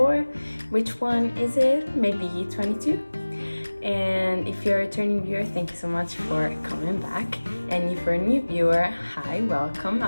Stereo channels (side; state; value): both; inverted; correlation -1.00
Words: which one is it, maybe 22. And if you're a returning viewer, thank you so much for coming back. And if you're a new viewer, hi, welcome.